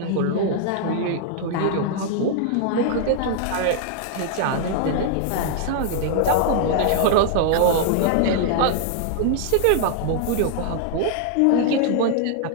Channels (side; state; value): both; different; correlation -0.01